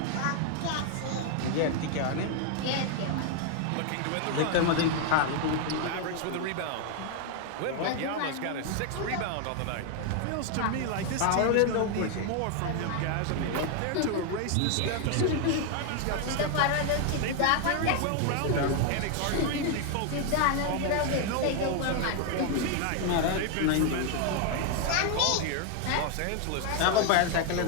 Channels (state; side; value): different; both; correlation 0.00